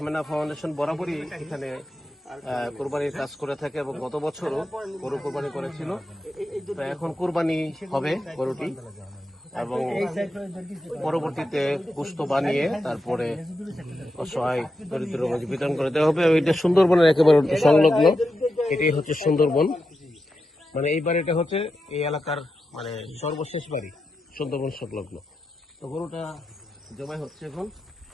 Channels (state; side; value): normal; both; correlation 0.88